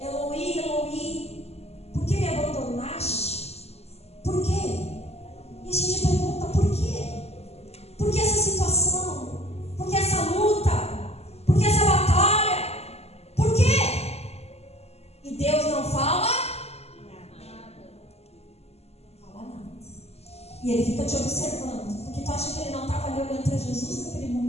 Eloi, por que me abandonaste? Por quê? E a gente pergunta: por quê? Por que essa situação? Por que essa luta? Por que essa batalha? Por quê? E Deus não fala nada. Não fala nada. E Ele fica te observando. Porque tu acha que Ele não estava ali olhando para Jesus naquele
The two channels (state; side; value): late; right; 0.30 ms